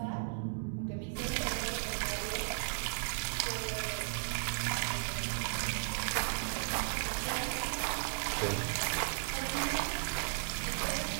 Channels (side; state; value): left; silent; digital silence